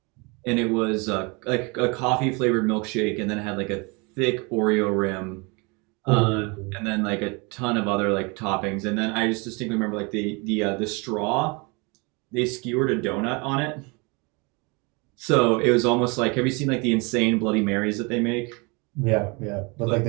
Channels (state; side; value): quieter; left; 29.2 dB